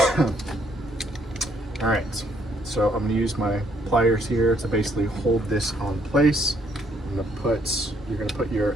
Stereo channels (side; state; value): both; normal; correlation 0.69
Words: All right, so I'm going to use my pliers here to basically hold this on place. You're going to put your